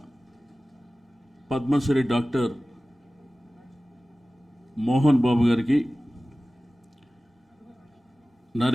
పద్మశ్రీ డాక్టర్ మోహన్ బాబు గారికి,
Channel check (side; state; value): both; normal; correlation 0.97